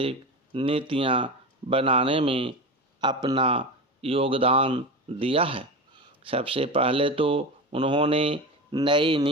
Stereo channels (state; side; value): normal; both; correlation 0.24